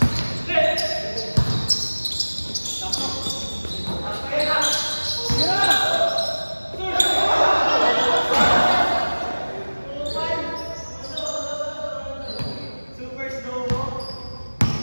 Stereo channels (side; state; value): both; inverted; correlation -1.00